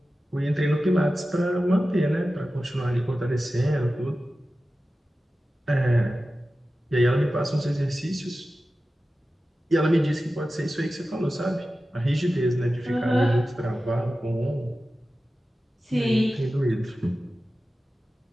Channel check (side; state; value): both; normal; correlation 0.94